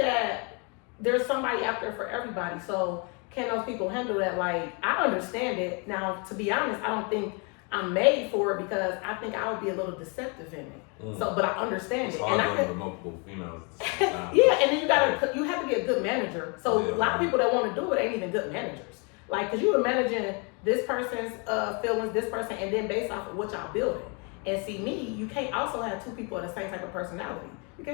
there's somebody out there for everybody. So can those people handle that? Like, I understand it. Now, to be honest, I don't think I'm made for it because I think I would be a little deceptive in it. So, but I understand it. And I can multiple females. Yeah, and then you have to be a good manager. So a lot of people that want to do it ain't even good managers. Like, cause you are managing this person's feelings, this person, and then based off of what y'all building. And see, me, you can't also have 2 people of the same type of personality. You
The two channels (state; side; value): quieter; right; 33.8 dB